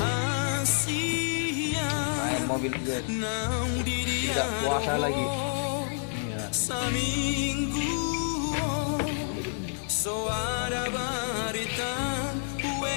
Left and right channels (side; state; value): right; silent; digital silence